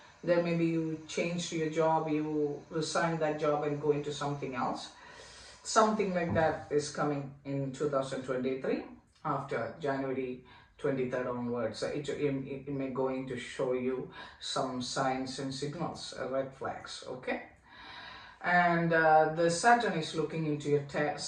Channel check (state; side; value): identical; both; correlation 1.00